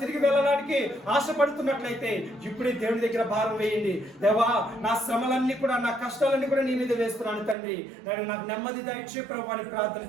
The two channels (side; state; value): left; drops out; at 7.6 s